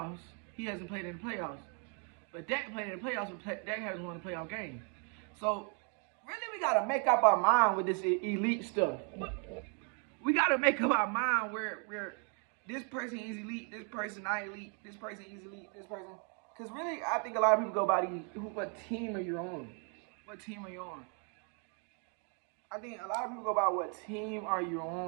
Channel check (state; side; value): quieter; left; 39.2 dB